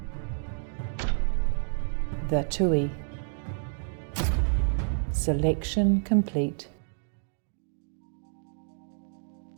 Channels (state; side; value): silent; left; digital silence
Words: The THRU. Selection complete.